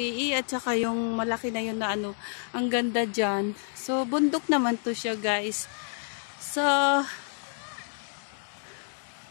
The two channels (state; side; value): silent; right; 59 dB below the other